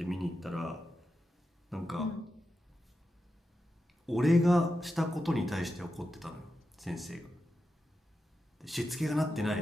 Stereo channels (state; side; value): normal; both; correlation 0.89